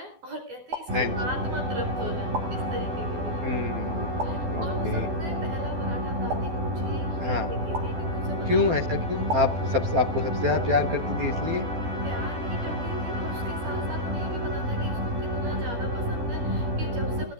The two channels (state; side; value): late; left; 12 ms